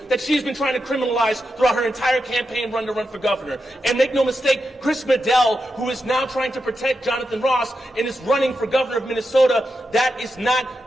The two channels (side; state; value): both; normal; correlation 0.87